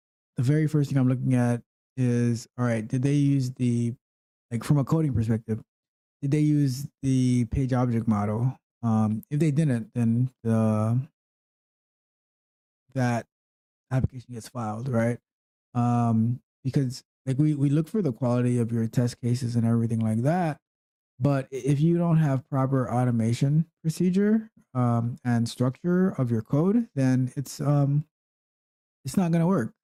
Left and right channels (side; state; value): both; identical; correlation 1.00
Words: the very first thing I'm looking at is, all right, did they use from a coding perspective, did they use the page object model? If they didn't, then that application gets filed, right? Because like we look for the quality of your test cases and everything like that. But if you don't have proper automation procedure and structure of your code, then it's not going to work.